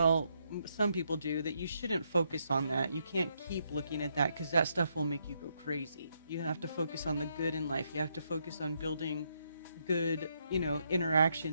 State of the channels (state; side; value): inverted; both; correlation -0.77